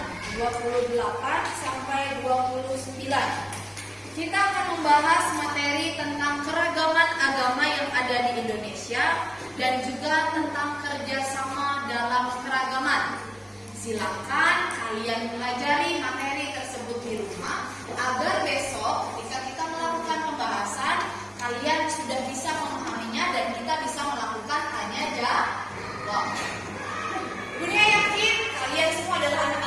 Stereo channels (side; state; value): both; identical; correlation 1.00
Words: 28 sampai 29. Kita akan membahas materi tentang keragaman agama yang ada di Indonesia dan juga tentang kerjasama dalam keragaman. Silakan kalian pelajari materi tersebut di rumah agar besok ketika kita melakukan pembahasan kalian sudah bisa memahaminya dan kita bisa melakukan tanya jawab. Dunia yakin kalian semua adalah